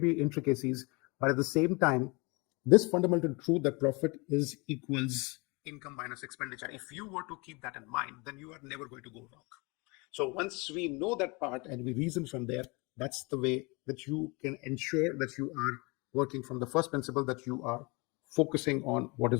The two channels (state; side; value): quieter; right; 27.8 dB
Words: intricacies, but at the same time, this fundamental truth that profit is equals income minus expenditure, if you were to keep that in mind, then you are never going to go wrong. So once we know that part and we reason from there, that's the way that you can ensure that you are working from the first principle, that you are focusing on what